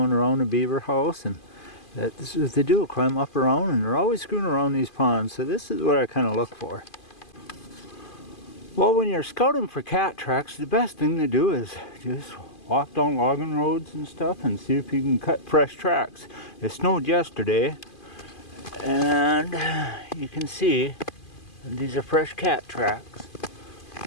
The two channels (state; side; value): late; right; 2.5 ms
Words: around the beaver house, and that's what they do, climb up around, and they're always screwing around these ponds. So this is what I kind of look for. Well, when you're scouting for cat tracks, the best thing to do is just walk down logging roads and stuff and see if you can cut fresh tracks. It snowed yesterday, and you can see these are fresh cat tracks